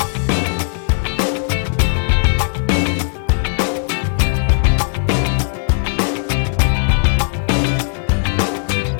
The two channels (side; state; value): right; silent; digital silence